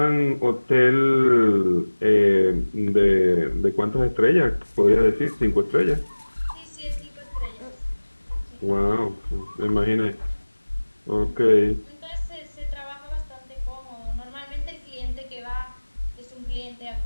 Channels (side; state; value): both; inverted; correlation -1.00